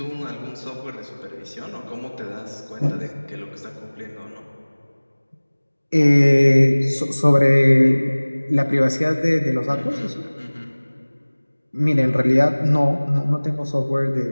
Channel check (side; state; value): both; inverted; correlation -1.00